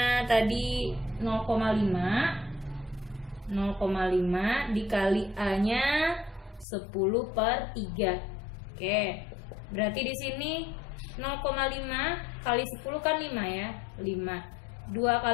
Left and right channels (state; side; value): drops out; right; at 6.7 s